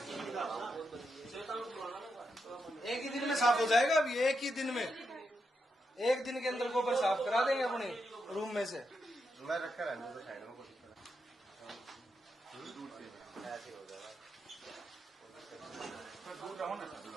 एक ही दिन में साफ हो जाएगा। अभी एक ही दिन में, एक दिन के अंदर गोबर साफ करा देंगे अपने रूम में से। मैं रखा रहने दो साइड में, कोशिश ऐसे हो जाएगा। दूर रहो ना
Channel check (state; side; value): normal; both; correlation 0.84